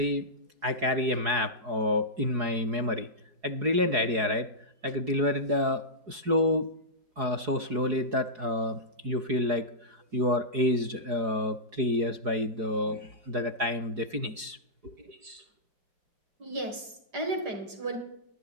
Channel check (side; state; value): left; late; 4.8 ms